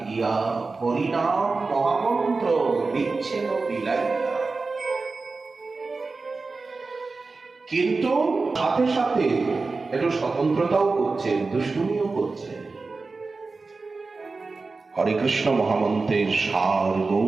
গিয়া হরিনাম মহামন্ত্র দিচ্ছেন বিলাইয়া। কিন্তু সাথে সাথে একটু স্বতন্ত্রতাও করছেন, দুষ্টুমিও করছেন। হরে কৃষ্ণ মহামন্ত্রের সার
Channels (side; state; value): left; quieter; 3.9 dB